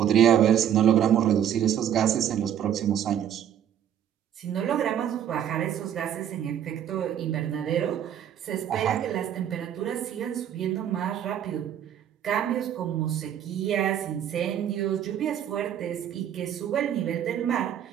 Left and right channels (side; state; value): left; quieter; 9.9 dB